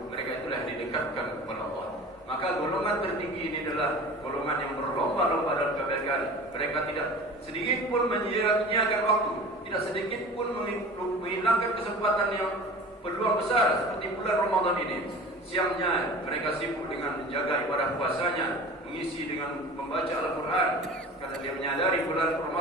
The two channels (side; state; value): both; normal; correlation 0.39